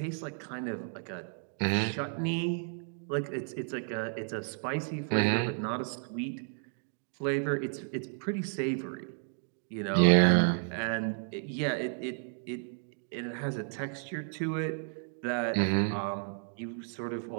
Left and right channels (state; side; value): silent; left; 56 dB below the other